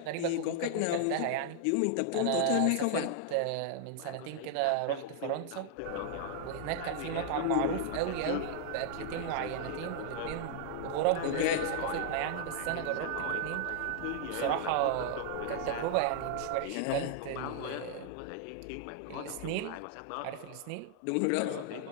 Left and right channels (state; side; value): different; both; correlation -0.01